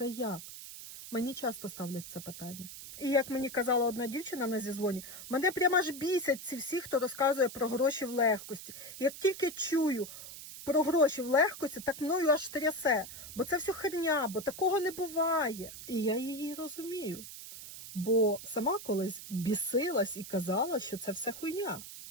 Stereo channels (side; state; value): right; noise; hiss, 12 dB below the sound